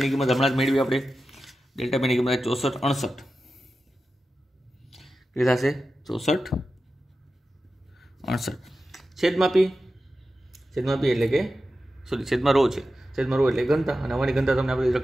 ની કિંમત હમણાં જ મેળવી આપણે. ડેલ્ટા P ની કિંમત 6468. એ થશે 6468 છેદમાં P એટલે કે છેદમાં રો છે, છેદમાં રો એટલે ઘનતા, અને અમારી ઘનતા તમને આપણી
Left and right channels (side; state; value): both; normal; correlation 0.92